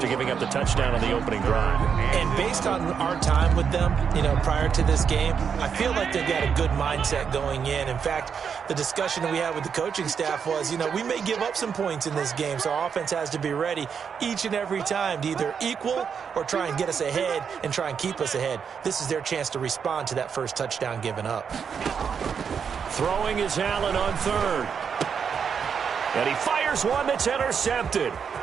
giving up the touchdown on the opening drive. And based on our time with them, prior to this game, I feel like they've got a good mindset going in. In fact, the discussion that we had with the coaching staff was, we may give up some points in this game, so our offense has to be ready each and every time to either equal or try and get us ahead and try and keep us ahead. This is their chance to respond to that first touchdown given up. Throwing is Allen on 3rd. And he fires one that's intercepted.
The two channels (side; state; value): left; quieter; 6.8 dB